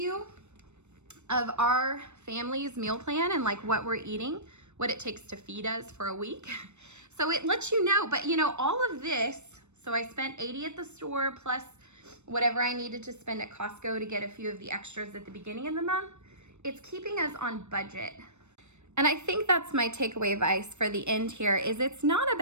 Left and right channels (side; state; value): left; late; 0.82 ms